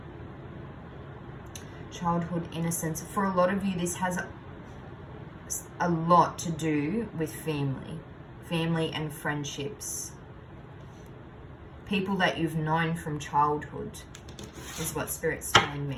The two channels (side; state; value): both; identical; correlation 1.00